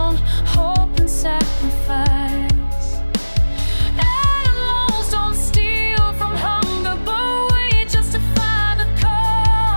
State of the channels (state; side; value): inverted; both; correlation -1.00